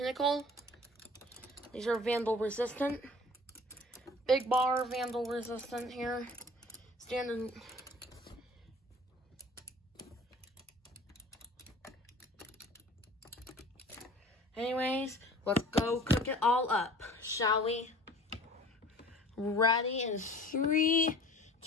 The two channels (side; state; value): both; normal; correlation 0.46